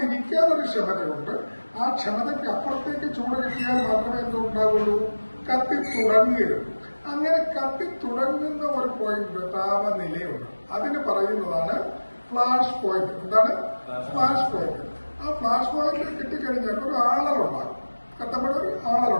ക്ഷമതയുണ്ട്. ആ ക്ഷമതയ്ക്ക് അപ്പുറത്തേക്ക് ചൂട് കിട്ടിയാൽ മാത്രമേ എന്തുണ്ടാവുള്ളൂ? കത്തിത്തുടങ്ങുകയുള്ളൂ. അങ്ങനെ കത്തിത്തുടങ്ങുന്ന ഒരു പോയിന്റ് താപനിലയുണ്ട്. അതിന് പറയുന്നതാണ് ഫ്ലാഷ് പോയിന്റ്. എന്താണ് ഫ്ലാഷ് പോയിന്റ്? ആ ഫ്ലാഷ് പോയിന്റ് കിട്ടിക്കഴിഞ്ഞാൽ ഒരു ആളലുണ്ടാകും. കത്തപ്പെടുന്ന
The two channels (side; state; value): both; inverted; correlation -1.00